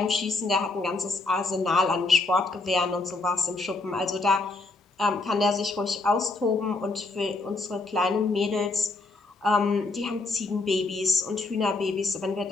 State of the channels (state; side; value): quieter; right; 3.3 dB